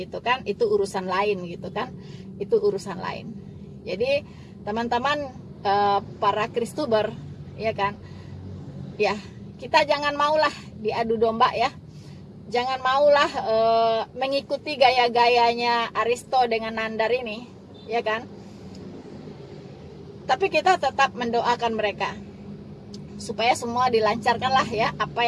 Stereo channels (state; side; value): identical; both; correlation 1.00